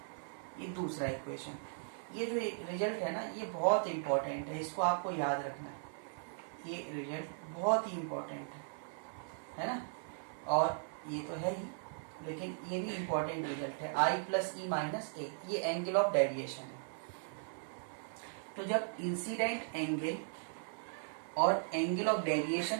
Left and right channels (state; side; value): silent; left; 52 dB below the other